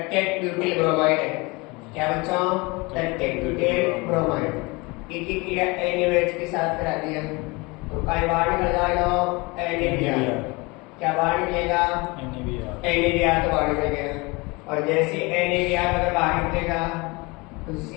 butyl bromide है। क्या बच्चों? टट्टेट ब्यूटिल ब्रोमाइड। एक ही क्रिया NaOH के साथ करा दिया तो काय बाहर निकल जाएगा NaBr। क्या बाहर निकलेगा? NaBr तो बाहर निकलेगा। और जैसे NaBr अगर बाहर निकलेगा तो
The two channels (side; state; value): right; quieter; 25.7 dB